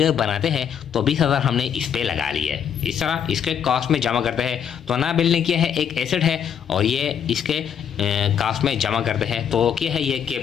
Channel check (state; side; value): quieter; right; 8.3 dB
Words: बनाते हैं तो 20,000 हमने इस पे लगा लिए, इस तरह इसके कॉस्ट में जमा करते हैं। तो नया बिल्डिंग क्या है, एक एसेट है और ये इसके कॉस्ट में जमा करते हैं, तो क्या है ये